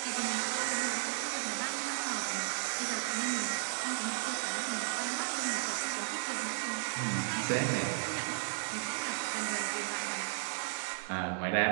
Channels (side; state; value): left; silent; digital silence